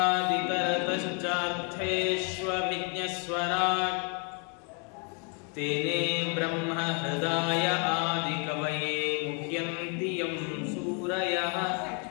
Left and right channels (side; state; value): right; quieter; 37.8 dB